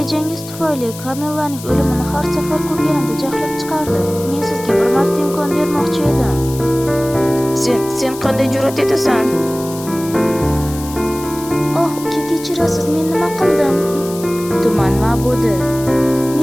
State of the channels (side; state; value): left; noise; hiss, 14 dB below the sound